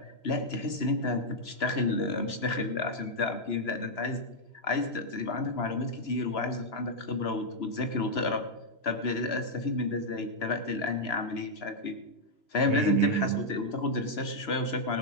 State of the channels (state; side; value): late; right; 3.0 ms